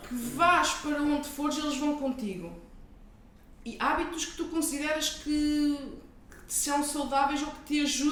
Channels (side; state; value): both; identical; correlation 1.00